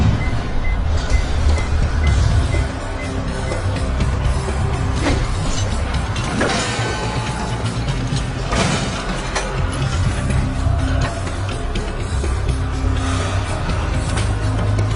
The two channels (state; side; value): identical; both; correlation 1.00